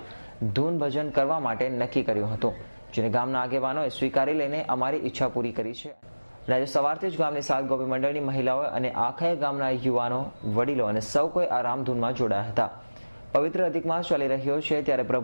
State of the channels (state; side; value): inverted; both; correlation -1.00